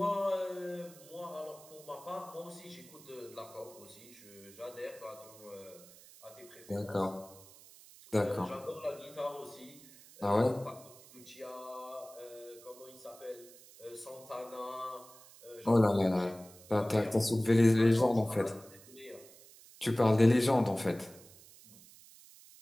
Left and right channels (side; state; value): right; noise; hiss, 21 dB below the sound